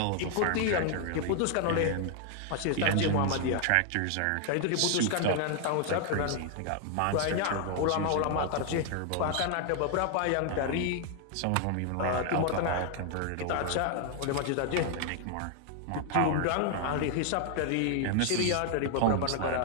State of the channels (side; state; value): both; different; correlation 0.00